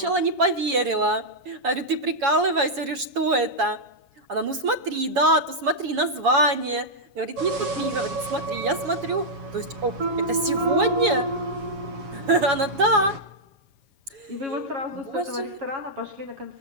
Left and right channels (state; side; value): late; left; 7.2 ms